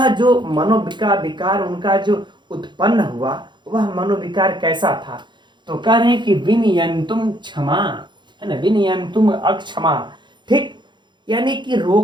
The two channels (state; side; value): late; left; 0.22 ms